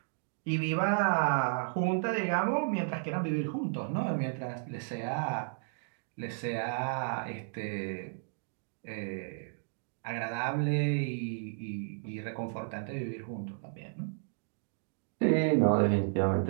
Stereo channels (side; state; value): left; silent; digital silence